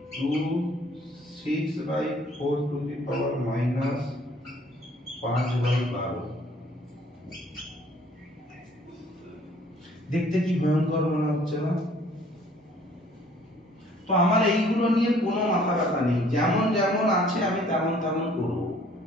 2 6/4 to the power minus 5/12। দেখতে কি ভয়ঙ্কর মনে হচ্ছে না? তো আমার এইগুলো নিয়ে কোনো মাথা ব্যথা নেই, যেমন যেমন আছে আমি তেমন তেমন করব।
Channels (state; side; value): normal; both; correlation 0.58